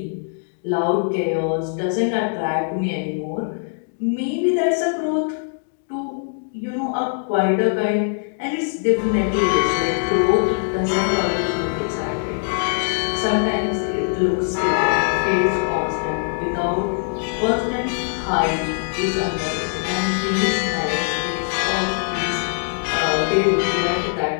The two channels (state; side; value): silent; right; digital silence